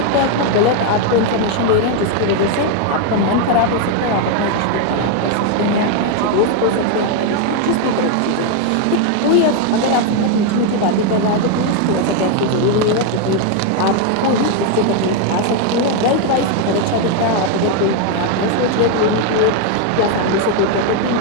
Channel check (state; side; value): different; both; correlation 0.01